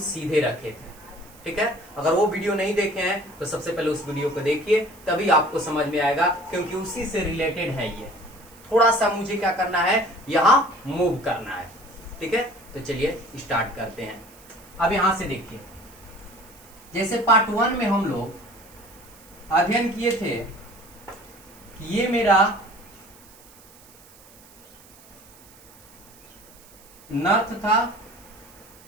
सीधे रखे थे। ठीक है, अगर वो वीडियो नहीं देखे हैं तो सबसे पहले उस वीडियो को देखिए, तभी आपको समझ में आएगा, क्योंकि उसी से रिलेटेड है ये। थोड़ा सा मुझे क्या करना है, यहां मूव करना है। ठीक है, तो चलिए स्टार्ट करते हैं। अब यहां से देखिए, जैसे पार्ट 1 में हम लोग अध्ययन किए थे कि ये मेरा नॉर्थ था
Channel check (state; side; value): noise; right; hiss, 24 dB below the sound